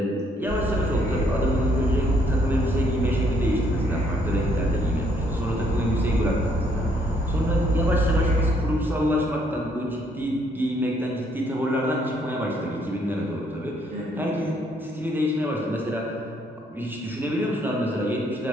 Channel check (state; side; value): normal; both; correlation 0.68